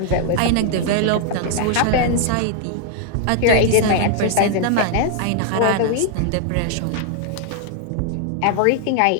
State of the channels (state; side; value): different; both; correlation 0.00